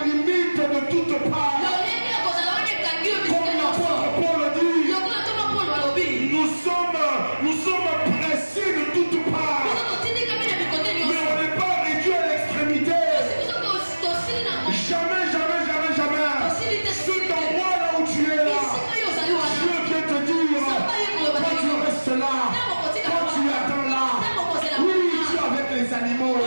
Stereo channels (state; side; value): inverted; both; correlation -1.00